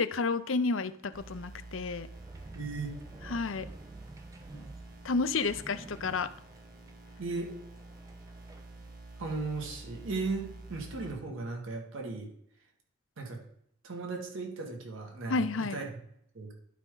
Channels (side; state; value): both; normal; correlation 0.27